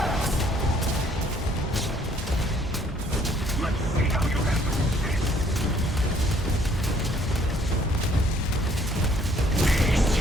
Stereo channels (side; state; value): both; normal; correlation 0.62